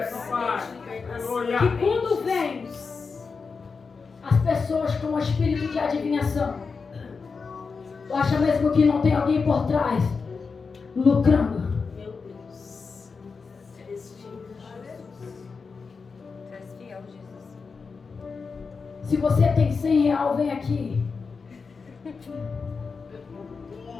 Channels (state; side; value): quieter; right; 4.9 dB